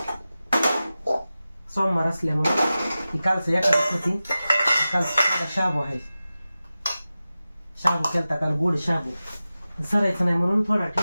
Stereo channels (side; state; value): both; inverted; correlation -0.95